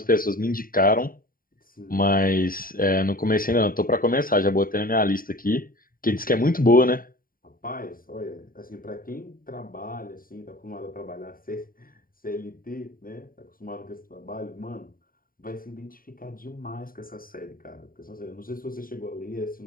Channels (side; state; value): right; late; 0.41 ms